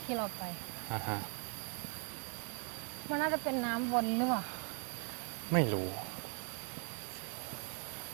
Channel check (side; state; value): left; quieter; 39.3 dB